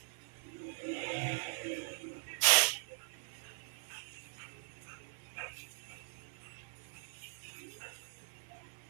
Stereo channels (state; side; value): silent; left; 51 dB below the other